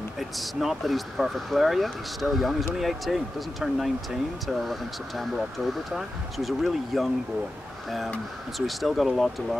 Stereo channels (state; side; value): normal; both; correlation 0.92